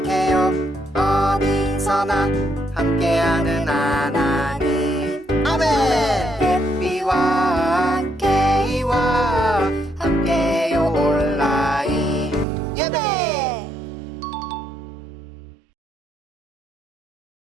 어디서나 함께하는 하나님. 아멘. 햇비와 함께 이와 함께요 온라인 예배.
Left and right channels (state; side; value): drops out; left; at 12.5 s